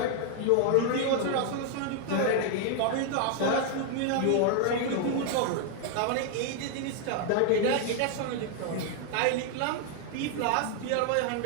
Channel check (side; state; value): both; different; correlation 0.00